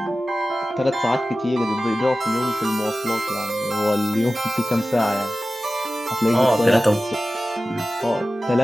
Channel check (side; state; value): both; normal; correlation 0.95